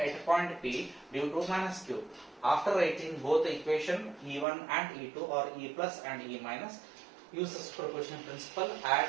a point P due to minus Q. After writing both the equation E1 and E2, or E plus and E minus, use the superposition principle, add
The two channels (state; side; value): drops out; left; at 4.5 s